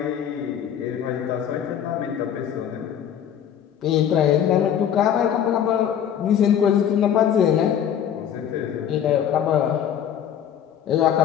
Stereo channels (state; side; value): quieter; right; 9.3 dB